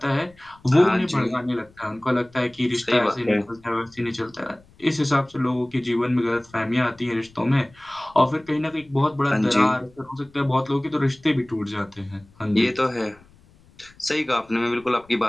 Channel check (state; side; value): noise; left; rumble, 28 dB below the sound